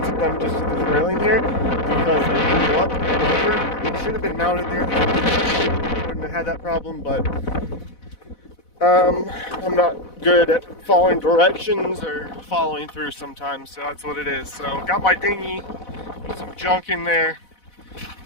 them just to the railing here because they blew up and over. They should have been mounted there. Wouldn't have had that problem, but I'm not good at following directions or following through sometimes, so that's what it is. So got my dinghy, some junk in there,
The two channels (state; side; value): late; right; 4.1 ms